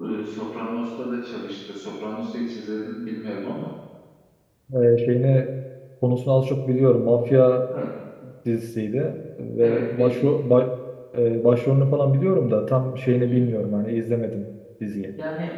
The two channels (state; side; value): identical; both; correlation 1.00